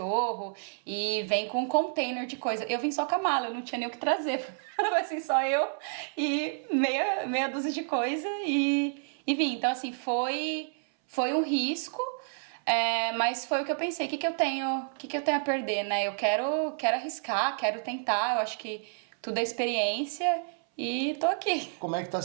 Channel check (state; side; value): silent; left; 58 dB below the other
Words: e vem com um container de coisa. Eu vim só com a mala, eu não tinha nem o que trazer. Assim, só eu e meia dúzia de coisa e vim. Então, assim, foi um risco, mas foi o que eu pensei. O que eu tenho a perder, né? Eu quero arriscar, quero tentar. Eu acho que tudo é experiência e tô aqui. Como é que tá